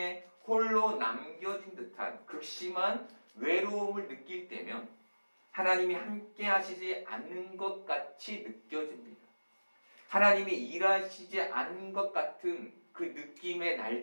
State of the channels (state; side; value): inverted; both; correlation -1.00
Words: 홀로 남겨진 듯한 극심한 외로움을 느낄 때면 하나님이 함께 하시지 않는 것 같이 느껴집니다. 하나님이 일하시지 않는 것 같은 그 느낌의